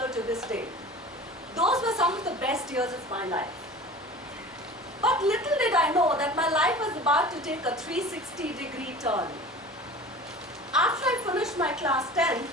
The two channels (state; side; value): normal; both; correlation 0.39